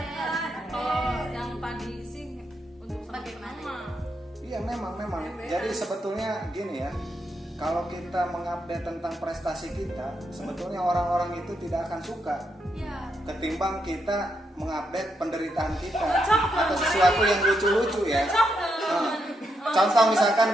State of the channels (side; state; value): both; normal; correlation 0.81